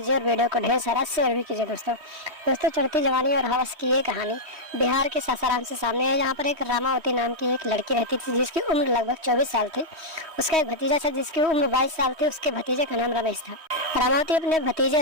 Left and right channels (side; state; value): left; late; 3.1 ms